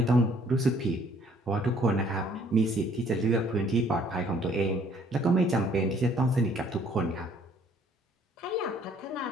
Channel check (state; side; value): normal; both; correlation 0.61